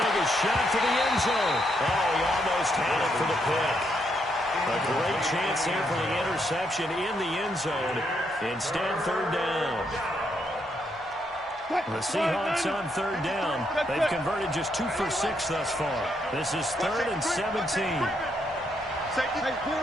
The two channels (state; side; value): normal; both; correlation 0.77